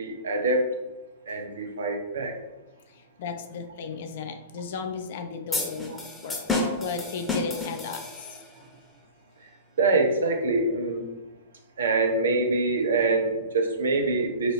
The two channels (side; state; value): both; inverted; correlation -0.37